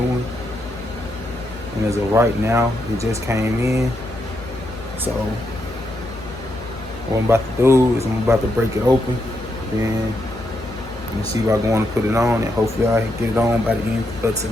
one, and as of right now, it just came in. So what I'm about to do is I'm about to break it open, then I'm gonna see if I go on to put it on, and hopefully I can get it on by the end of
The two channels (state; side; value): noise; left; hum, 15 dB below the sound